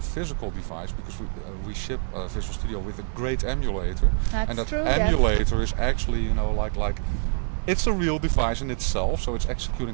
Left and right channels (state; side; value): silent; left; digital silence